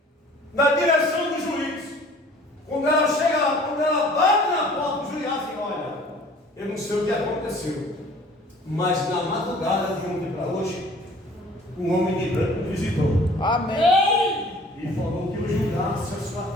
na direção do juiz. Quando ela chega lá, quando ela bate na porta do juiz, assim: olha, eu não sei o que aconteceu, mas na madrugada de ontem para hoje, um homem de branco me visitou. Amém. E falou que eu julgasse a sua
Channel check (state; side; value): normal; both; correlation 0.51